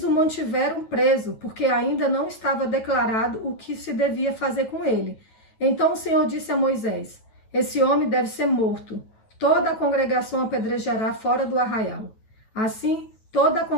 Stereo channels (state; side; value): late; right; 9.2 ms